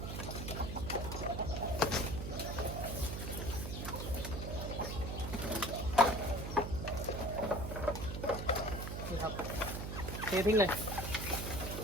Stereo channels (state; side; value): noise; right; hum, 5 dB below the sound